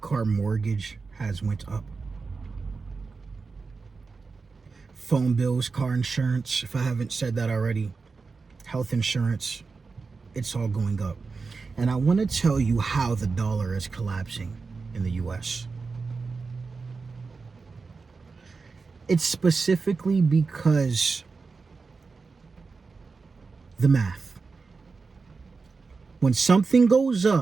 mortgage has went up, phone bills, car insurance, if I haven't said that already, health insurance, it's all going up. And I want to tell you how the dollar is collapsing in the U.S. It's specifically because the math. When something goes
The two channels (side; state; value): left; quieter; 4.5 dB